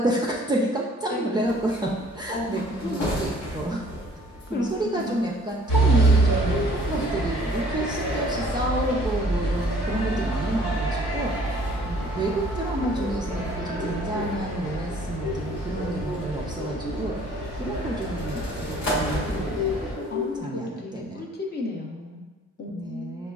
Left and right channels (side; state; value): both; normal; correlation 0.56